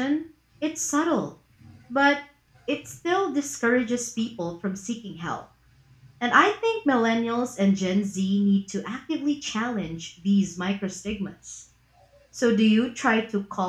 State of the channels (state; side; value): identical; both; correlation 1.00